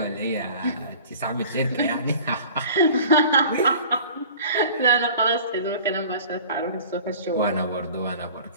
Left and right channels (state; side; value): inverted; both; correlation -0.45